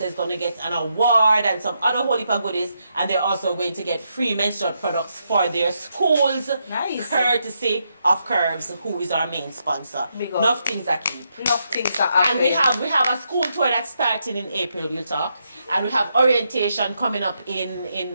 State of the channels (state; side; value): inverted; both; correlation -0.80